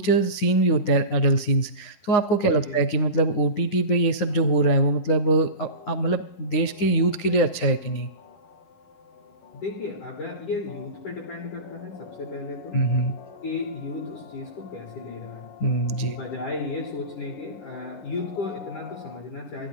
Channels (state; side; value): late; right; 9.7 ms